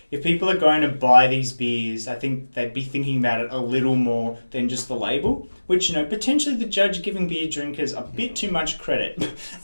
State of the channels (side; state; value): both; inverted; correlation -1.00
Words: if people are going to buy these beers, I think they'd be thinking about it a little more than just the label, which, potentially the judge giving beer drinkers a bit too much credit.